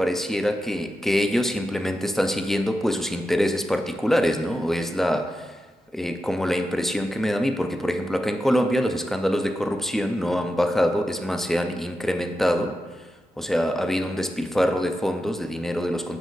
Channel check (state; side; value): normal; both; correlation 0.89